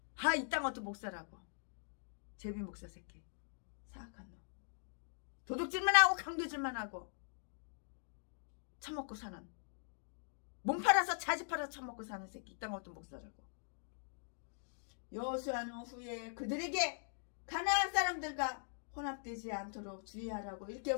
이딴 것도 목사라고. 제비 목사 새끼. 사악한 놈. 도둑질만 하고 강도질만 하고 처먹고 사는, 몸 팔아서 자지 팔아서 처먹고 사는 새끼. 이딴 것도 목사라고. 여호수아는 후에 그들에게 가나안 사람들과 혼합되지 않도록 주의하라고 이렇게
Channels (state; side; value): silent; right; digital silence